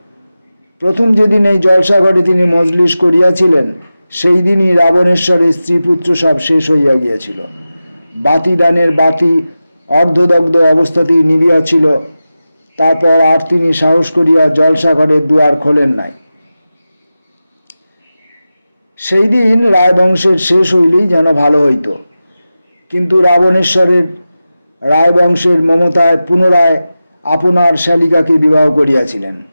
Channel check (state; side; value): inverted; both; correlation -0.94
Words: প্রথম যেদিন এই জলসাঘরে তিনি মজলিস করিয়াছিলেন, সেই দিনই রাবণেশ্বরের স্ত্রীপুত্র সব শেষ হইয়া গিয়াছিল। বাতিদানের বাতি অর্ধদগ্ধ অবস্থাতেই নিভিয়াছিল। তারপর আর তিনি সাহস করিয়া জলসাঘরের দুয়ার খোলেন নাই। সেই দিন রায়বংশের শেষ হইলেই যেন ভালো হইত, কিন্তু রাবণেশ্বরের রায়বংশের মমতায় পুনরায় আপনার শালিকাকে বিবাহ করিয়াছিলেন।